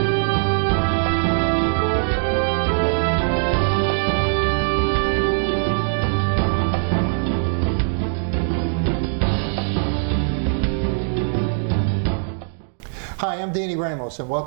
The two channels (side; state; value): left; silent; 65 dB below the other